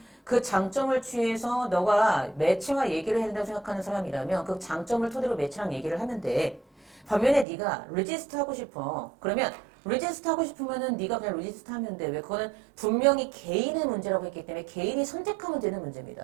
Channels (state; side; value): drops out; left; at 7.5 s